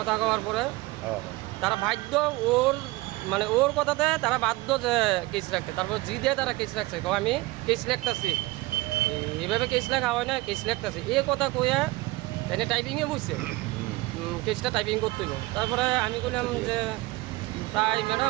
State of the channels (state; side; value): quieter; left; 20.9 dB